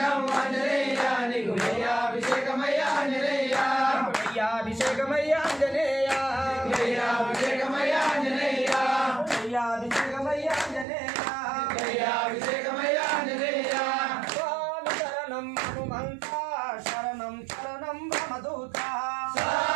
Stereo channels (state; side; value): drops out; left; at 10.9 s